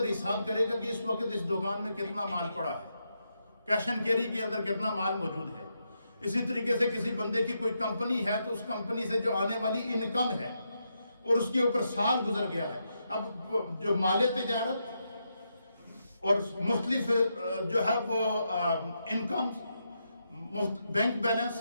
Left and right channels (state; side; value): inverted; both; correlation -0.83